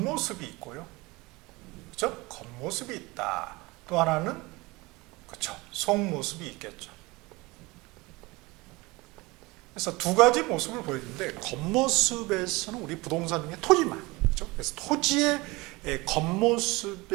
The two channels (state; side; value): quieter; left; 23.2 dB